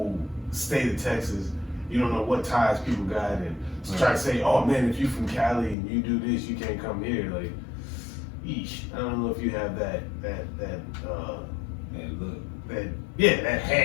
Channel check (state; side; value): drops out; right; at 5.8 s